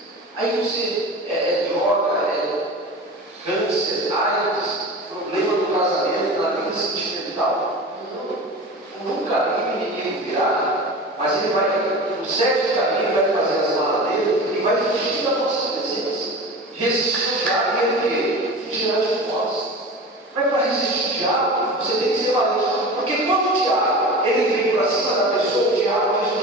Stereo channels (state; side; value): normal; both; correlation 0.33